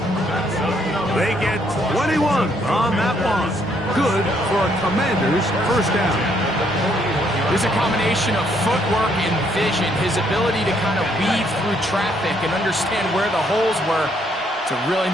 They get 21 on that one. Good for a Commander's 1st down. There's a combination of footwork and vision, his ability to kind of weave through traffic and understand where the holes were. It's a really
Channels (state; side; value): normal; both; correlation 0.70